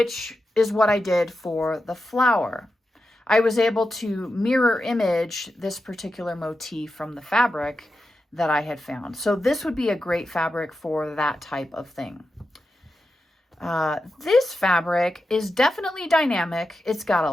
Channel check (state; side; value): normal; both; correlation 0.89